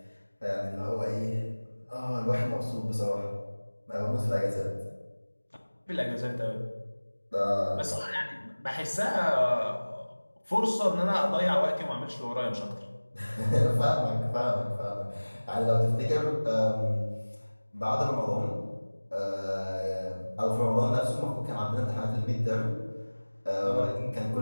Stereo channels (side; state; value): both; inverted; correlation -1.00